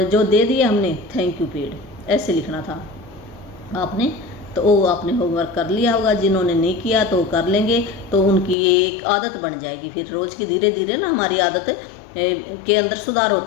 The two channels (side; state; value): right; drops out; at 8.6 s